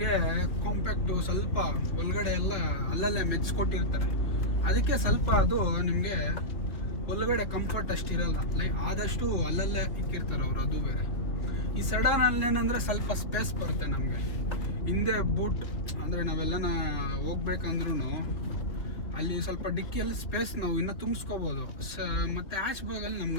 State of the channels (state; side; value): late; right; 3.0 ms